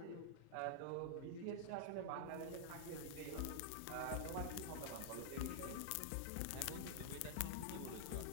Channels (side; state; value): both; different; correlation -0.01